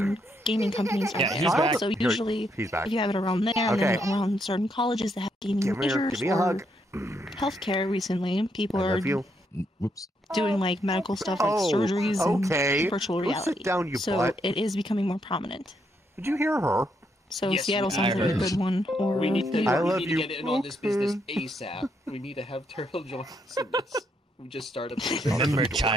hosting. and gaming companies are Yeah, there. he's back. So Here, usually, he's back. if you have it around there, and Okay. then around certain colleges that have gaming Give me majors a or hug. healthcare recently, people I are love you. Whoops. doing like medical stuff like Oh, surgeries okay. and virtual Go sit reality. down, you so butt. it is becoming more prominent. Did you hear her? So Yes, Seattle I sounds like a heard. good one. Or We need to, New I York. we love need you. to get in on this business ASAP. We need to have Turtle join us in this. We just started. Remember,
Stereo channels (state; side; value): normal; both; correlation 0.76